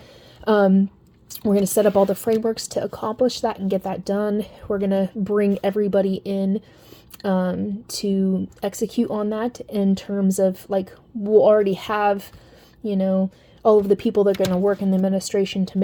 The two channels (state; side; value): identical; both; correlation 1.00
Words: We're going to set up all the frameworks to accomplish that and get that done. We're going to bring everybody in to execute on that in terms of like, we'll already have, all of the people that are going to work in the administration to